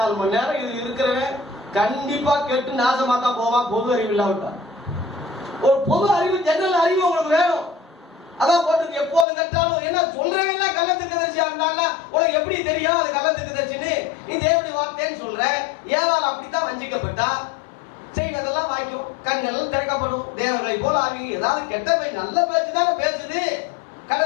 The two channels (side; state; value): right; drops out; at 9.2 s